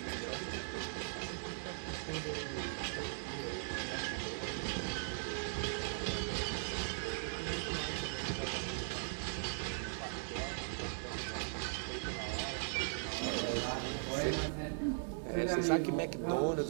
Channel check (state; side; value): silent; left; digital silence